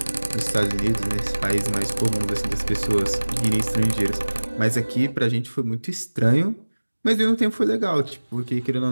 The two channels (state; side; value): inverted; both; correlation -1.00